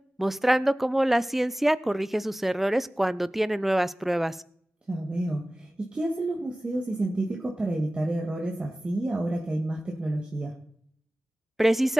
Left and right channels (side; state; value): both; normal; correlation 0.97